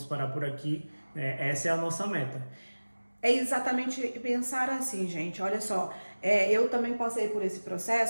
parar por aqui, essa é a nossa meta. É exatamente pensar assim, gente, olha só, eu também passei por esse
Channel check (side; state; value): both; inverted; correlation -1.00